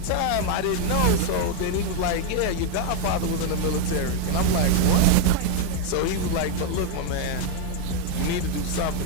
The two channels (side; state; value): both; different; correlation 0.01